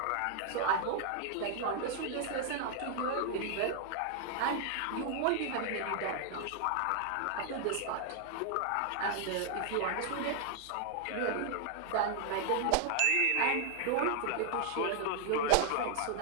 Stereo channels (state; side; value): different; both; correlation 0.00